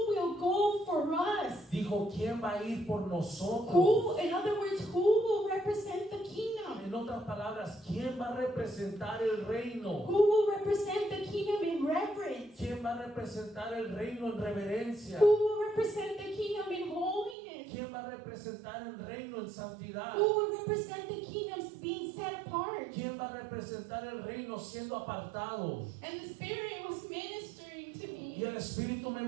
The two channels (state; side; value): drops out; left; at 17.4 s